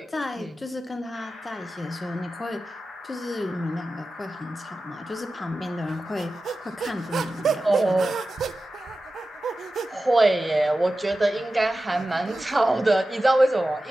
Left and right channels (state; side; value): normal; both; correlation 0.94